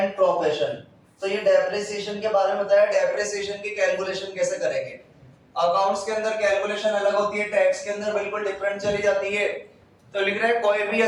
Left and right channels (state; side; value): identical; both; correlation 1.00